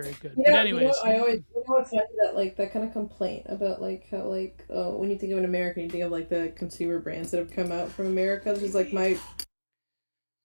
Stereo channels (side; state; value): both; inverted; correlation -1.00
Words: good. But anyways, I always, it's funny that like that kind of complaint about like how like oh when you think of an American, you think of like the consumer brands that have come out from America. This is like my